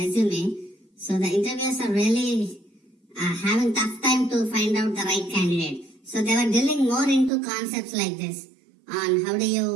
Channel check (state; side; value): drops out; left; at 7.3 s